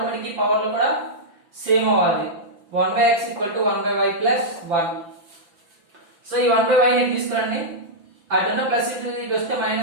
ఈ పవర్ లో కూడా సేమ్ అవ్వాలి, 1/x equal to 1/y plus 1. So ఈ 1/y ని తీసుకురండి, అటున్న ప్లస్ ఇటు వస్తే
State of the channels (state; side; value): late; left; 5.9 ms